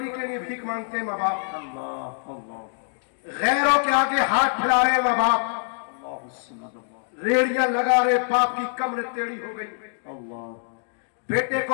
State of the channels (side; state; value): right; silent; digital silence